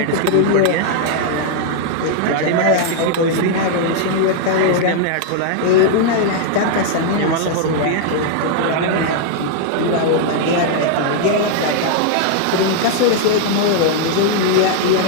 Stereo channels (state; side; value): different; both; correlation 0.00